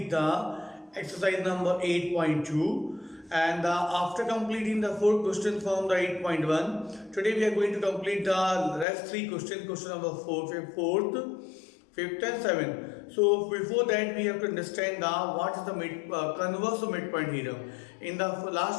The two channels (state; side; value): drops out; right; at 8.8 s